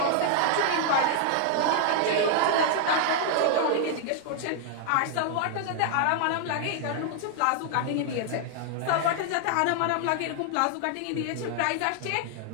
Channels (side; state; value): both; different; correlation 0.00